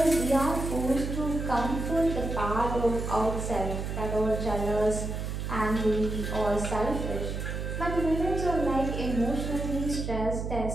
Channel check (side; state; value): right; noise; hum, 4 dB below the sound